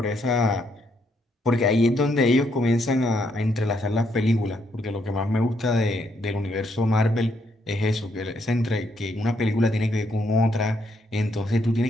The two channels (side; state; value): both; normal; correlation 0.74